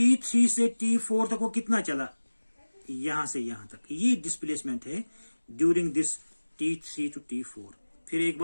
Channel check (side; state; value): both; inverted; correlation -1.00